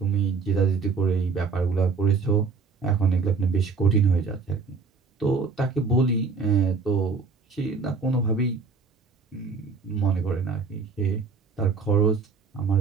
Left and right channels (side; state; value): left; quieter; 4.7 dB